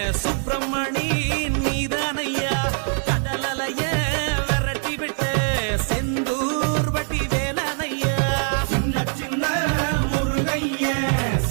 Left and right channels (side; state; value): left; silent; 55 dB below the other